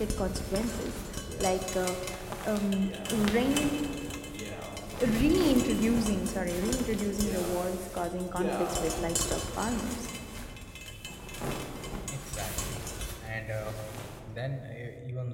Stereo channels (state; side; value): identical; both; correlation 1.00